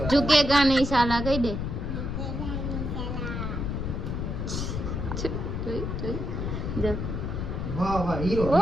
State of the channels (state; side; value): noise; left; rumble, 3 dB below the sound